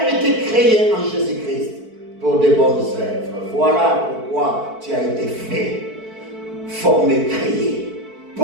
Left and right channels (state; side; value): late; left; 4.5 ms